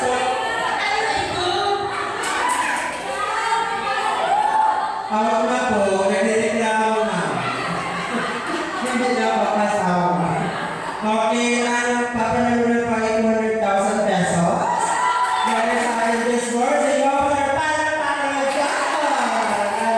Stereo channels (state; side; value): identical; both; correlation 1.00